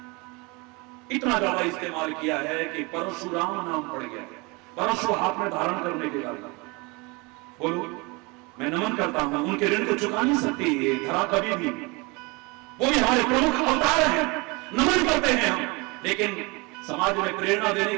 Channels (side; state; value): left; quieter; 27.0 dB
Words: इतना ज्यादा इस्तेमाल किया है कि परशुराम नाम पड़ गया है, परशु हाथ में धारण करने के कारण। बोलो, मैं नमन करता हूं, उनके ऋण को चुका नहीं सकती ये धरा कभी भी। वो भी हमारे प्रमुख अवतार हैं, नमन करते हैं हम। लेकिन समाज में प्रेरणा देने